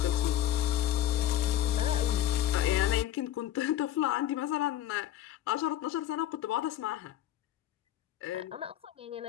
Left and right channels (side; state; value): right; quieter; 12.2 dB